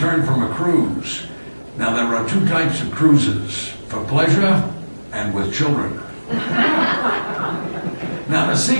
from a cruise. Now, there are two types of cruises, for pleasure and with children. Now, the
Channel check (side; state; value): both; inverted; correlation -1.00